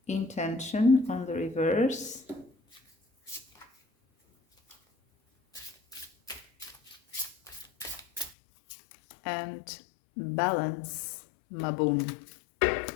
Intention on the reverse. And balance, Maboom.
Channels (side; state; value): right; drops out; at 8.3 s